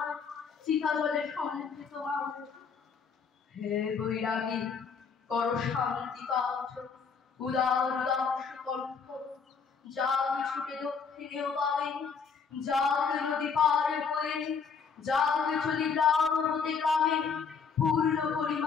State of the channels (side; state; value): right; quieter; 5.8 dB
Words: চিতা জলে সমৃদ্ধ মানুষ হে বৈরাগী কর শান্তি পাঠ উদার দাস কণ্ঠ যাকে ছুটে দক্ষিণেও পাবে যাকে নদী পার হয়ে যাকে চলি গ্রাম হতে গ্রামে পূর্ণ